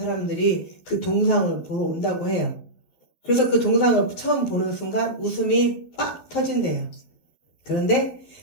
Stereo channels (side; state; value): right; late; 11 ms